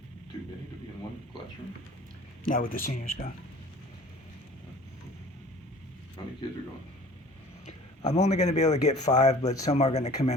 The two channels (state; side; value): normal; both; correlation 0.47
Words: too many to be in one classroom? Now with the seniors gone. How many kids are going? I'm only going to be able to get 5, but some are going to come